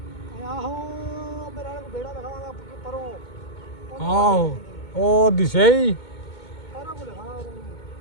ਆਹੋ ਮੇਰੇ ਨਾਲ ਵੇੜਾ ਲਖਾਵਾਂਗਾ ਪਰੋਂ। ਆਹੋ ਉਹ ਦਿਸੇ ਹੀ ਸਾਰਾ ਕੁਝ ਲਖਾਣਾ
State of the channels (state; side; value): late; right; 2.2 ms